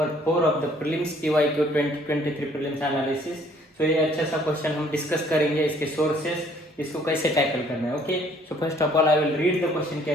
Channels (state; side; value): normal; both; correlation 0.60